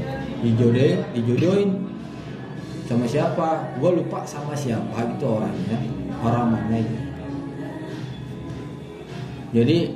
Dijodohin sama siapa? Gue lupa sama siapa gitu orangnya, orang mana gitu.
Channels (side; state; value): both; identical; correlation 1.00